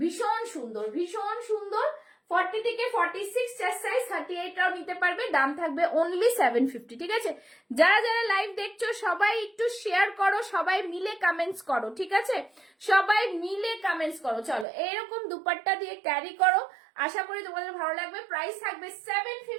সুন্দর, ভীষণ সুন্দর। 40 থেকে 46 চেস্ট সাইজ, 38টাও নিতে পারবে। দাম থাকবে অনলি 750। ঠিক আছে, যারা যারা লাইভ দেখছো সবাই একটু শেয়ার করো, সবাই মিলে কমেন্টস করো। ঠিক আছে, সবাই মিলে কমেন্টস করো। চলো, এরকম দুপাট্টা দিয়ে ক্যারি করো, আশা করি তোমাদের ভালো লাগবে। প্রাইস থাকবে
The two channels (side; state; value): left; drops out; at 14.7 s